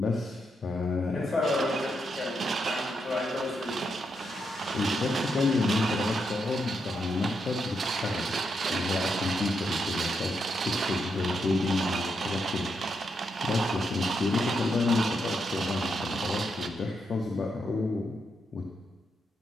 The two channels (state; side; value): normal; both; correlation 0.81